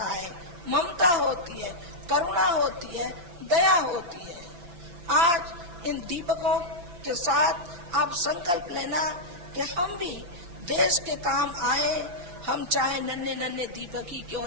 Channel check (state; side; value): late; left; 5.9 ms